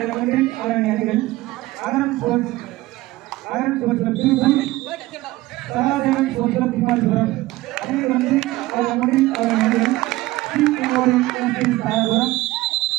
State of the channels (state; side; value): quieter; left; 18.2 dB